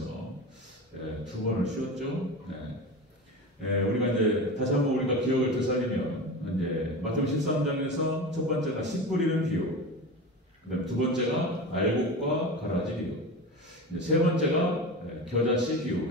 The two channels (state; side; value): normal; both; correlation 0.28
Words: 두 번을 쉬었죠. 우리가 이제 다시 한번 우리가 기억을 되살리면 이제 마태복음 13장에서 첫 번째가 씨 뿌리는 비유, 그다음 두 번째가 알곡과 가라지 비유, 세 번째가 겨자씨 비유